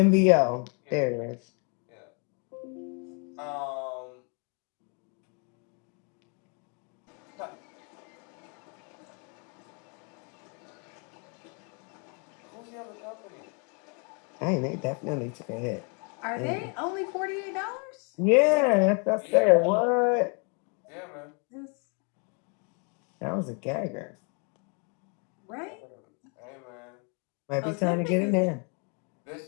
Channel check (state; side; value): quieter; right; 36.5 dB